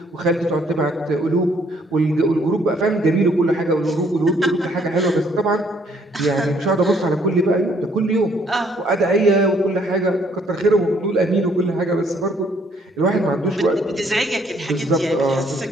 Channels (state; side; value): normal; both; correlation 0.65